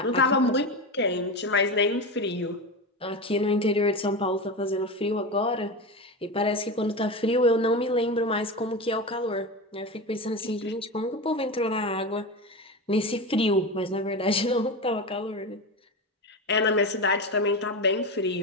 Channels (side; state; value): both; normal; correlation 0.21